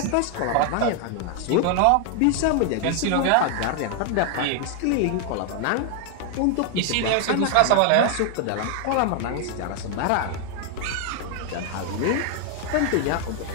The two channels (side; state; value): both; different; correlation 0.00